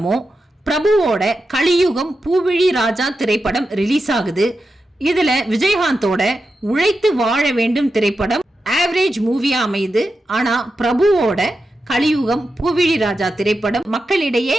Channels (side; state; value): both; normal; correlation 0.89